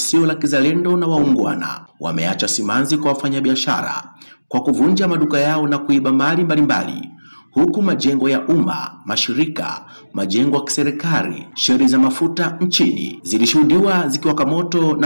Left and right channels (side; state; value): both; inverted; correlation -1.00